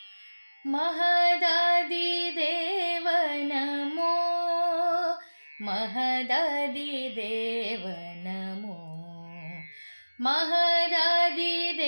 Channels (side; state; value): both; inverted; correlation -1.00